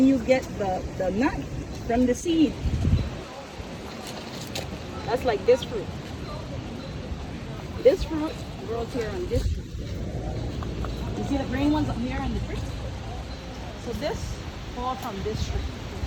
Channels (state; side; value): identical; both; correlation 1.00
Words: you get the nut from the seed. That's like this fruit. This fruit grows here on this tree. You see the green ones up here on the tree? So this falls from this tree.